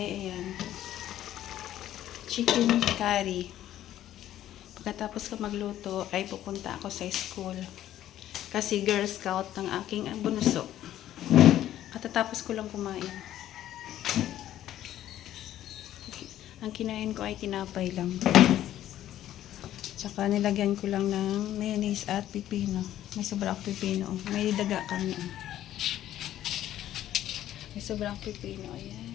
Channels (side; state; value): right; quieter; 12.5 dB